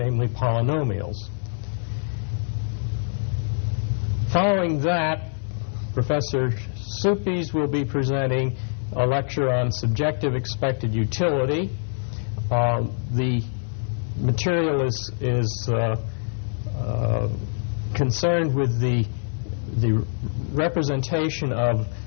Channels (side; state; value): right; silent; 62 dB below the other